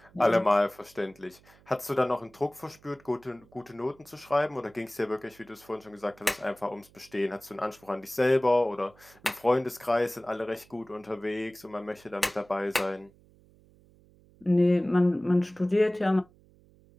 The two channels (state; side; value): noise; right; hum, 28 dB below the sound